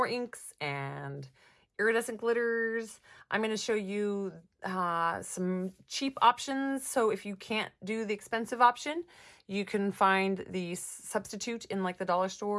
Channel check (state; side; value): identical; both; correlation 1.00